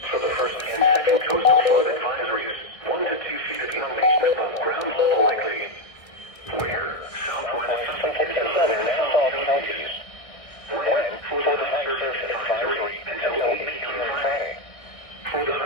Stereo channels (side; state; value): right; late; 1.6 ms